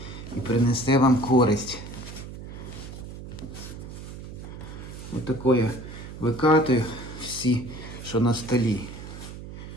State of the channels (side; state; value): right; noise; hum, 11 dB below the sound